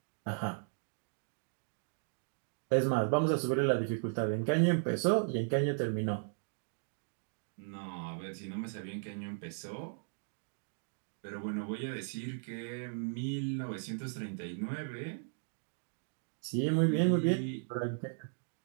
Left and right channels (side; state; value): left; silent; digital silence